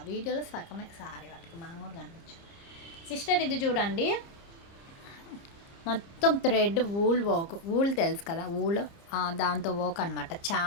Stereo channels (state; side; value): late; right; 30 ms